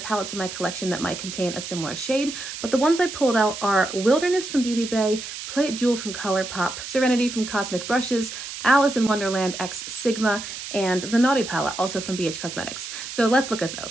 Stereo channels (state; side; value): noise; right; hiss, 9 dB below the sound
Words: in my collection that might contain a similar shade, but the ones I pulled out are Wilderness from Beauty Bay, Play It Jewel from ColourPop, Serenity from Cosmic Brushes, Alice in Wonderland X Sigma, and the Naughty palette, also from BH Cosmetics. So let's look at